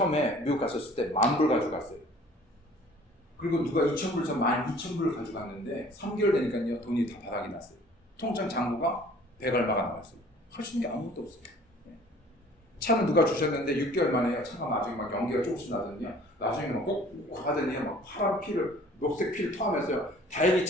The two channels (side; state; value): both; normal; correlation 0.52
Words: 미국 갔었을 때 10,000불 가지고 갔어요. 그리고 누가 2,000불, 저 12,000불을 가지고 갔는데 3개월 되니까요, 돈이 다 바닥이 났어요. 통장 잔고가 100 얼마가 나왔어요. 할 수 있는 게 아무것도 없어요. 예. 차는 누가 주셨는데 6개월 만에 차가 나중에 막 연기가 조금씩 나더니요, 나중에는 꼭 하더니 막 파란 피를, 녹색 피를 토하면서요, 다행히